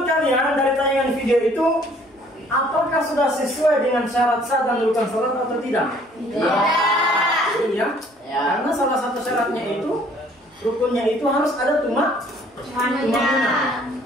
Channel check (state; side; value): normal; both; correlation 0.58